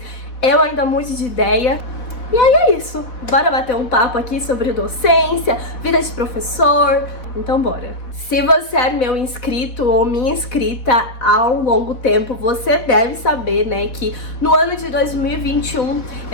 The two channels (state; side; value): late; right; 4.1 ms